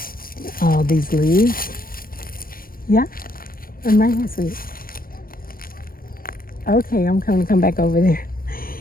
All these leaves. Yeah, I'm right here, sweet. Okay, I'm going to come back over there.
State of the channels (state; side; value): late; right; 0.42 ms